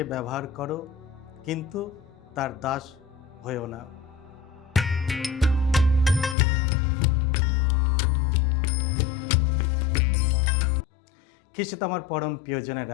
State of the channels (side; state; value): right; drops out; at 6.4 s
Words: ব্যবহার করো, কিন্তু তার দাস হয়েও না। খ্রিস্টে আমার পরম